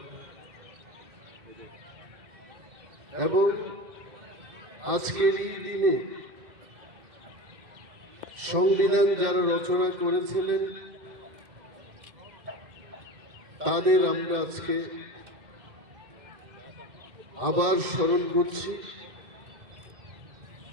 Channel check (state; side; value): late; left; 2.0 ms